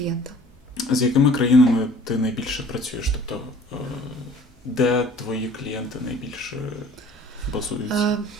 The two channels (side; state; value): both; normal; correlation 0.51